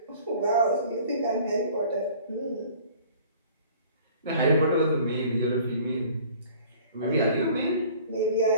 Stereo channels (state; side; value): inverted; both; correlation -0.50